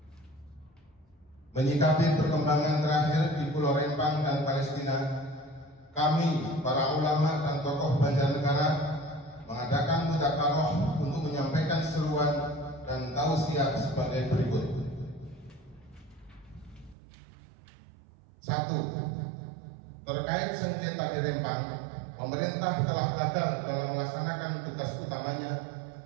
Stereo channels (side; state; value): left; drops out; at 16.9 s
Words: Menyikapi perkembangan terakhir di Pulau Rempang dan Palestina, kami, para ulama dan tokoh Banjarnegara, mengadakan mudzakarah untuk menyampaikan seruan dan tausiah sebagai berikut. 1. Terkait sengketa di Rempang, pemerintah telah gagal dalam melaksanakan tugas utamanya,